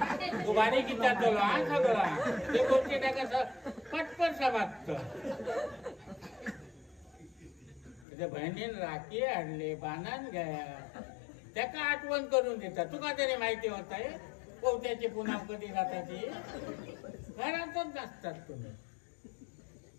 तू गाडी किती तुला सगळा ते गोष्टी टाकायचं पटपट समाप्त त्याच्या बहिणीन राखी आणले बाणान घ्या त्याका आठवण करून देतात तुका तरी माहिती होत आहे पोहत्याची पुन्हा कधी जाताची घरातच नसतात तुम्ही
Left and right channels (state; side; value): drops out; right; at 8.1 s